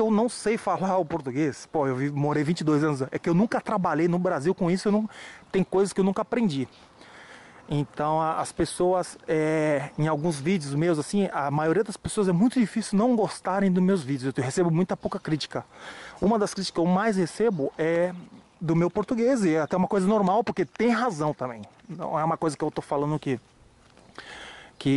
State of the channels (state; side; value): identical; both; correlation 1.00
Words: eu não sei falar o português, pô, morei 22 anos, é que eu nunca trabalhei no Brasil com isso, tem coisas que eu nunca aprendi. Então as pessoas, em alguns vídeos meus, assim, a maioria das pessoas é muito difícil não gostarem dos meus vídeos. Eu recebo muita pouca crítica. Uma das críticas que eu mais recebo é do meu português, e é até uma coisa normal, porque tem razão também. Não é uma coisa que eu tô falando que